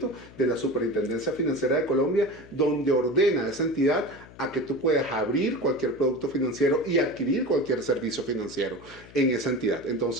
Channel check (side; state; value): left; noise; hum, 20 dB below the sound